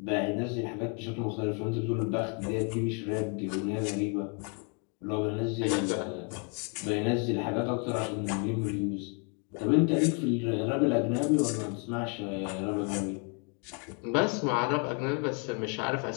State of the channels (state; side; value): quieter; right; 37.4 dB